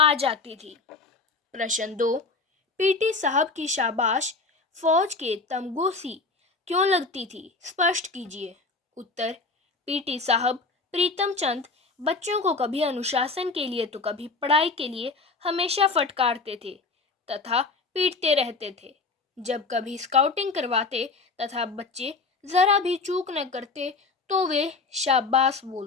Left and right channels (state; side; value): quieter; right; 4.0 dB